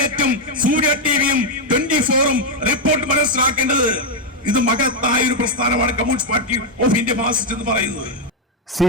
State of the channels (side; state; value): both; normal; correlation 0.02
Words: സൂര്യ ടിവിയും 24-ഉം റിപ്പോർട്ട് മനസ്സിലാക്കേണ്ടത് ഇത് മഹത്തായ ഒരു പ്രസ്ഥാനമാണ് communist party of India Marxist എന്ന് പറയുന്നത്.